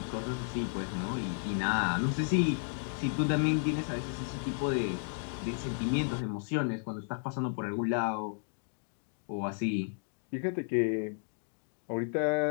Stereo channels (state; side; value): silent; right; digital silence